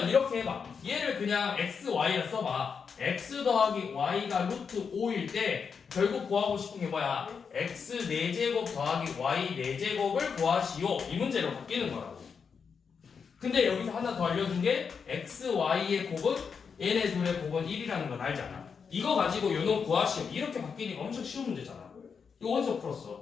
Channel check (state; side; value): quieter; right; 6.1 dB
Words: 이렇게 해봐. 얘를 그냥 x, y라 써봐. x 더하기 y가 루트 5일 때 결국 구하고 싶은 게 뭐야? x 4제곱 더하기 y 4제곱을 구하시오, 이 문제로 바뀌는 거라고. 근데 여기서 하나 더 알려준 게 x, y의 곱은 얘네 둘의 곱은 1이라는 건 알잖아. 이거 가지고 요놈 구하시오, 이렇게 바뀌니까 엄청 쉬운 문제잖아. 이거 어디서